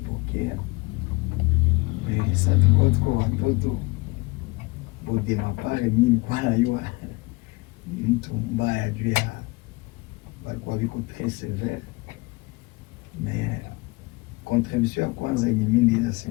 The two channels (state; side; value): quieter; right; 24.7 dB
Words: Mais ça tuko tuko watoto. Bode mapare mimi kwa najua ni mtu mbaya juu ya walikuwa viko très sévère. Mais contribution ya kwanza yenye mimi naweza